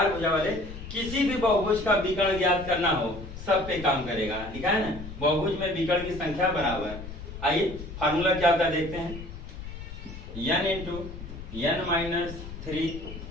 भुजा वाले, किसी भी बहुभुज का विकर्ण ज्ञात करना हो सब पे काम करेगा। लिखा है ना, बहुभुज में विकर्ण की संख्या बराबर। आइए फार्मूला क्या होता है देखते हैं। n into n minus 3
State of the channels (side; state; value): left; noise; rumble, 11 dB below the sound